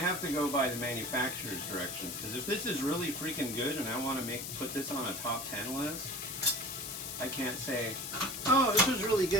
to go by the manufacturer's directions, because if this is really freaking good and I want to put this on a top 10 list, I can't say, oh, this was really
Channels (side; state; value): left; noise; hiss, 6 dB below the sound